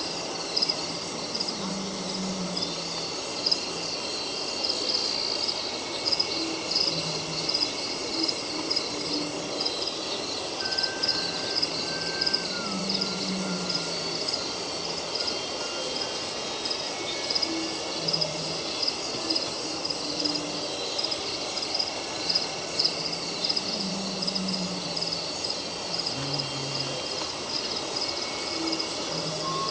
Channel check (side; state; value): both; identical; correlation 1.00